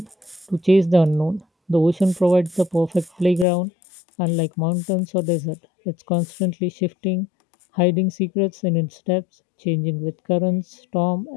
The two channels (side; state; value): right; drops out; at 3.5 s